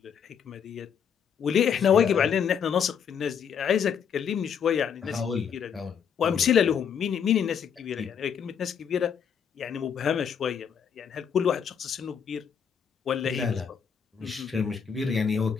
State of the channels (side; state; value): right; quieter; 7.5 dB